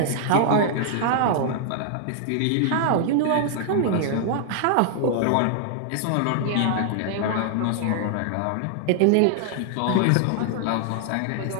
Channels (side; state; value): both; different; correlation 0.00